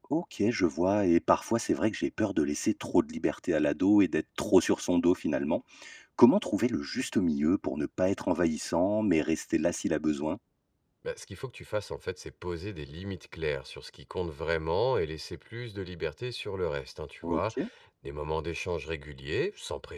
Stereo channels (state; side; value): identical; both; correlation 1.00